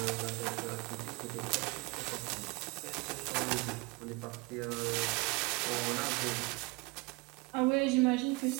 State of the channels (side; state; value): left; quieter; 26.0 dB